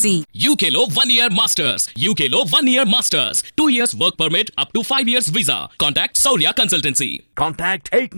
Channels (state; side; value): inverted; both; correlation -1.00